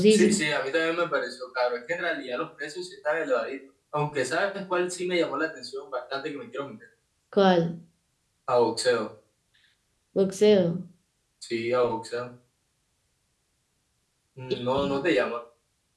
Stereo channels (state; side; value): identical; both; correlation 1.00